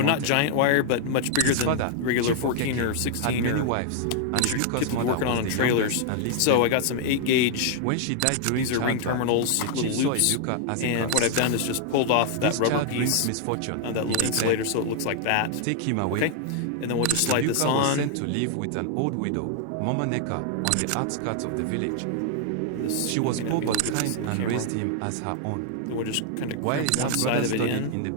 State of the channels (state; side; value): different; both; correlation 0.00